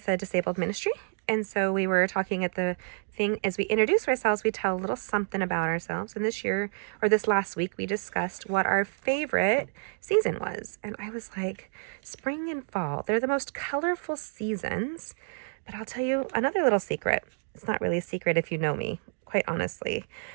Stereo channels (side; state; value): left; silent; 59 dB below the other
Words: a disabled ministry. And so we were talking at the thing, as we introduce ourselves, we tell a little something about ourselves. And this last week, we discussed what our favorite season was. And I was like, spring and fall, they're the most colorful seasons. But I'll tell you another little secret. It's not really a secret if you know me, quite honestly.